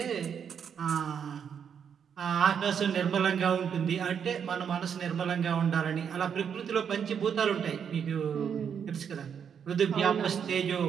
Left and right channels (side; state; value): left; quieter; 7.6 dB